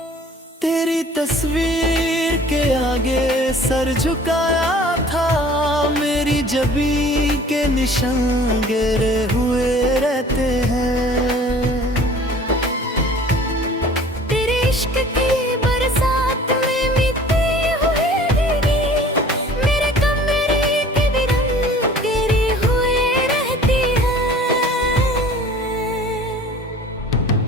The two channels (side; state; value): both; normal; correlation 0.48